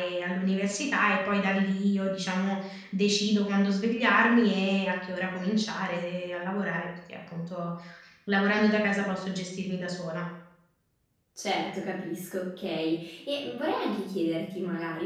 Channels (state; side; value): identical; both; correlation 1.00